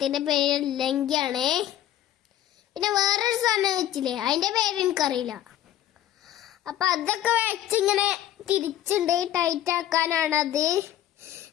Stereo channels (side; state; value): right; quieter; 12.2 dB